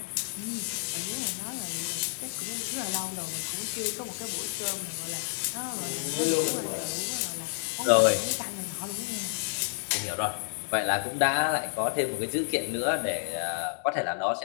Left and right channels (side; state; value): right; silent; digital silence